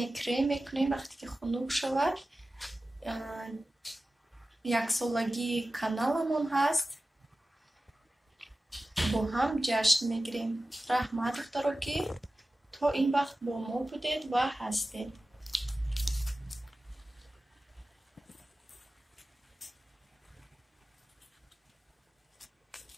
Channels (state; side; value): normal; both; correlation 0.95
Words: کرم میکنیم وقتی که خنک شود. یک سالگی کانالمون هست، با هم جشن میگیریم. رحمت دکتر که تا این وقت با ما بودید و هستید.